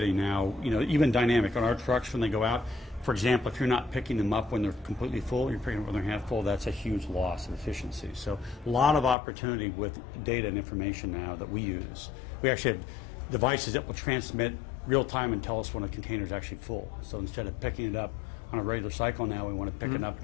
now, you know, even dynamic on our trucks when they go out. For example, if you're not picking them up when they're completely full, you're picking them up when they're half full, that's a huge loss of efficiency. So a lot of opportunity with data and information now that we use. We actually have devices that will transmit real time and tell us when a container is actually full. So instead of picking it up on a regular cycle now, we want to pick it up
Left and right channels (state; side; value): drops out; right; at 9.2 s